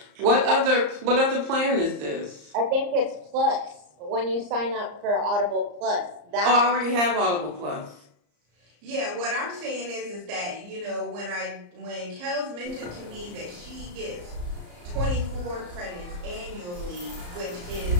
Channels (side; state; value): left; late; 34 ms